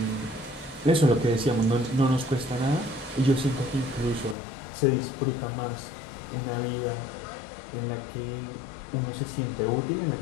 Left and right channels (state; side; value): drops out; right; at 4.4 s